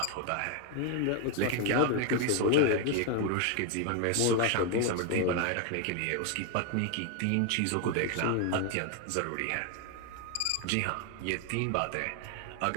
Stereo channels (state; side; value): different; both; correlation 0.01